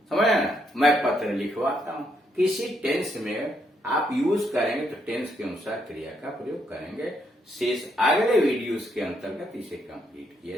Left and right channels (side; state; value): both; normal; correlation 0.75